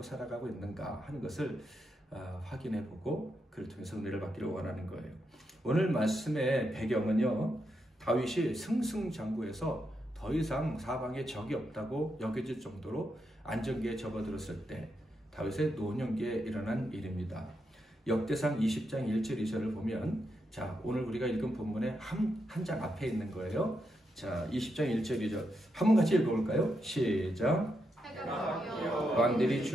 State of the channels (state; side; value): normal; both; correlation 0.83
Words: 살아가고 있는가 하는 것을 확인해보고 그를 통해서 은혜를 받기를 원하는 거예요. 오늘 말씀의 배경은요, 다윗이 승승장구해서 더 이상 사방에 적이 없다고 여겨질 정도로 안정기에 접어들었을 때 다윗의 노년기에 일어난 일입니다. 역대상 20장 1절 2절을 보면, 자, 오늘 우리가 읽은 본문의 한 장 앞에 있는 거예요. 자, 20장 1절 2절 한번 같이 읽어볼까요? 시작. 왕들이